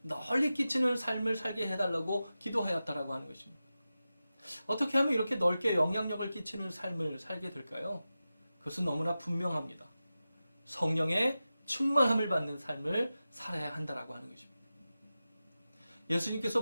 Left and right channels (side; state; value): both; inverted; correlation -0.94